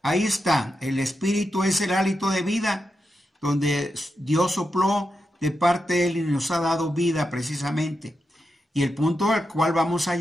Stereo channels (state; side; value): normal; both; correlation 0.87